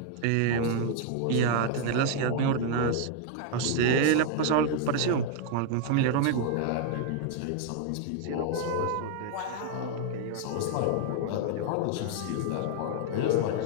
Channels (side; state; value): both; different; correlation 0.00